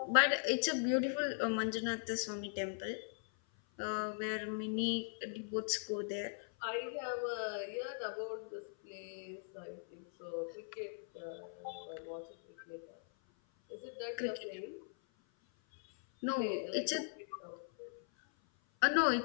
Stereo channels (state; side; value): silent; right; 51 dB below the other